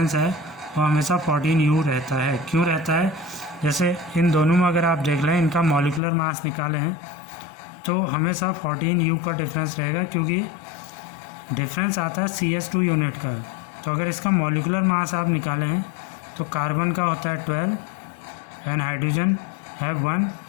है वो हमेशा 14U रहता है. क्यों रहता है? जैसे इन दोनों में अगर आप देख लें इनका मॉलिकुलर मास निकालें हैं तो हमेशा 14U का डिफरेंस रहेगा क्योंकि डिफरेंस आता है CH2 यूनिट का. तो अगर इसका मॉलिकुलर मास आप निकालें हैं तो कार्बन का होता है 12 एंड हाइड्रोजन हैव 1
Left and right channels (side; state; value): right; drops out; at 6.0 s